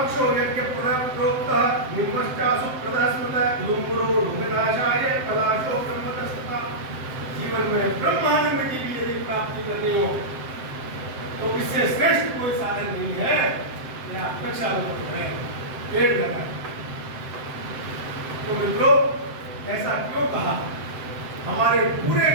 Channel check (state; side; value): late; left; 7.8 ms